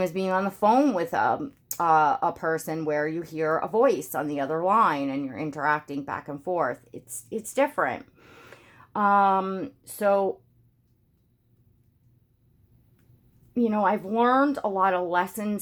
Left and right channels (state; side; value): identical; both; correlation 1.00